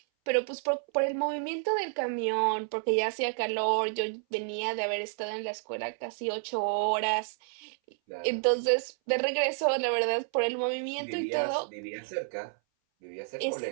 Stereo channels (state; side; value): silent; left; 58 dB below the other